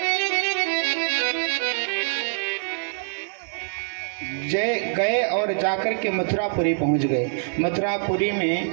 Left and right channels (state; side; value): silent; left; digital silence